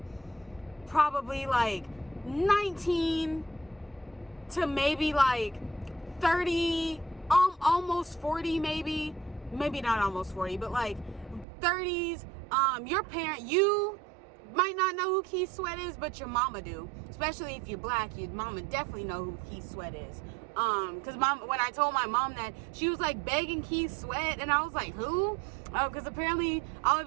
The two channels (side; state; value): left; drops out; at 11.5 s